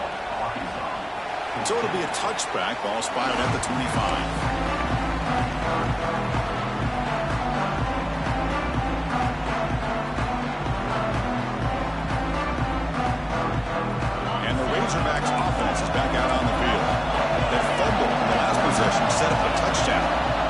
So it'll be a touchback. Ball spotted at the 25. And the Razorbacks offense is back out on the field. That fumble in the last possession set up a touchdown.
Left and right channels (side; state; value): both; identical; correlation 1.00